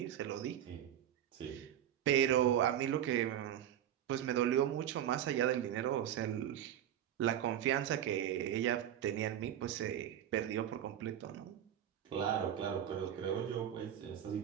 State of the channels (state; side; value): quieter; left; 10.7 dB